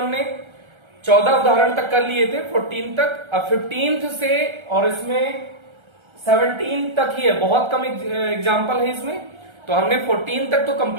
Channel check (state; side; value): late; left; 1.3 ms